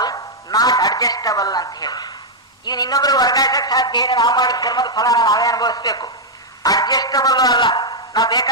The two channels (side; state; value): both; normal; correlation -0.03